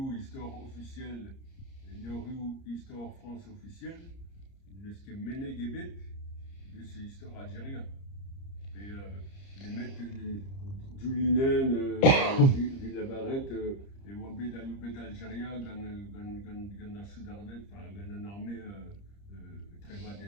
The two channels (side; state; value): right; late; 30 ms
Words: histoire officielle, il y a eu histoire France officielle, de ce qui est mené Guébet, de cette histoire algérienne. Et les mecs du Linen, Villa Barrette, et Wabé d'Aloubet d'Algérie, Gana Soudarnet, enfin, Gana armée très